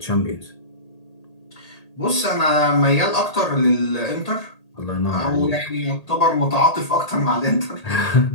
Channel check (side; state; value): right; late; 1.8 ms